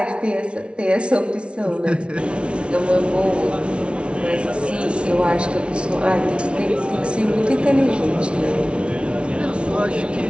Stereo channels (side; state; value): left; late; 0.059 ms